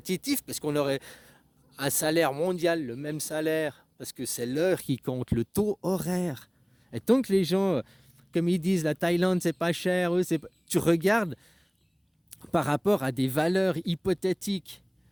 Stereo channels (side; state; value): both; identical; correlation 1.00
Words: parce qu'on aurait un salaire mondial, le même salaire, parce que c'est l'heure qui compte, le taux horaire. Et tant que les gens, comme ils disent, la Thaïlande, c'est pas cher, tu regardes par rapport à des valeurs hypothétiques.